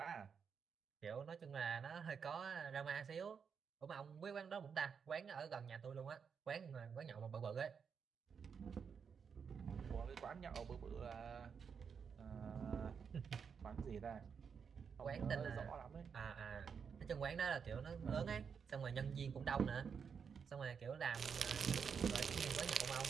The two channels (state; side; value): quieter; left; 6.5 dB